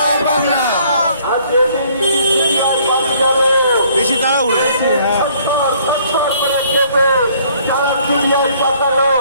বেশি তারা উড়েছে। সারা দুনিয়ায় পাঠালো,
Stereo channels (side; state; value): both; inverted; correlation -0.61